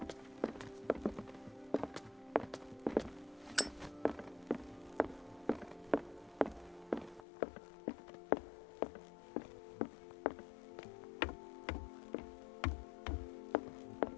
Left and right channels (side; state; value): right; drops out; at 7.2 s